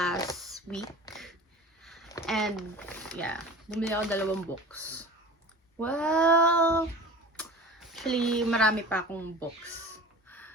week. And yeah, bumili ako 2 books. Well, actually marami pa akong books.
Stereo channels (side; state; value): both; normal; correlation 0.37